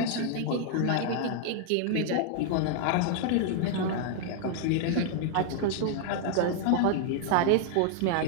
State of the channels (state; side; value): different; both; correlation 0.00